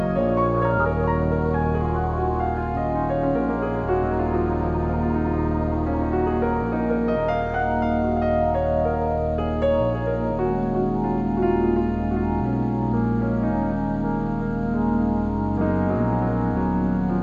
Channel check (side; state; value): both; identical; correlation 1.00